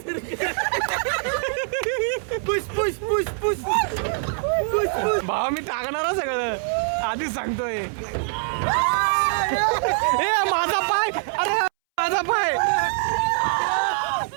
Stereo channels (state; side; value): silent; left; 63 dB below the other